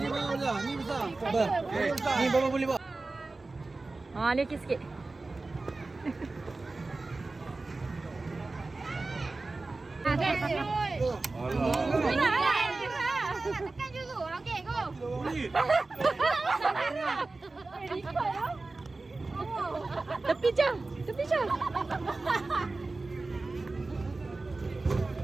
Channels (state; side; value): quieter; left; 3.4 dB